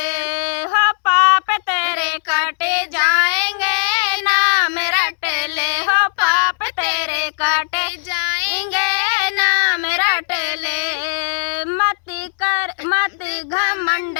हो पाप तेरे काटे जाएंगे, ना मेरा टेले हो पाप तेरे काटे जाएंगे, ना मेरा टेले। मत घमंड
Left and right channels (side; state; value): right; silent; digital silence